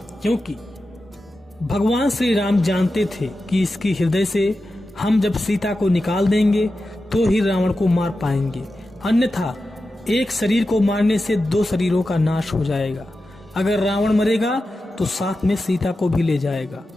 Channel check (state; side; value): normal; both; correlation 0.92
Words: क्योंकि भगवान श्री राम जानते थे कि इसके हृदय से हम जब सीता को निकाल देंगे तो ही रावण को मार पाएंगे, अन्यथा एक शरीर को मारने से दो शरीरों का नाश हो जाएगा। अगर रावण मरेगा तो साथ में सीता को भी ले जाएगा।